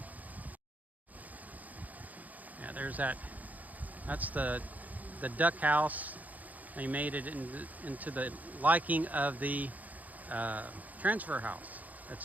Yeah, there's that's the duck house. They made it into the liking of the transfer house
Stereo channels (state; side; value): late; left; 0.079 ms